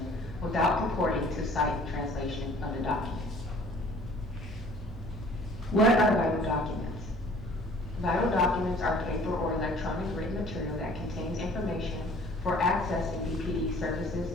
without purporting to cite the translation of the document. What are vital documents? Vital documents are paper or electronic written material that contains information for accessing BPD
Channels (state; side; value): normal; both; correlation 0.52